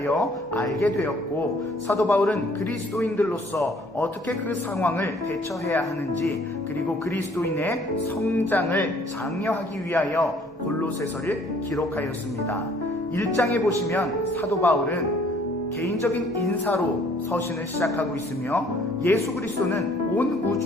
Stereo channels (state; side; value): normal; both; correlation 0.59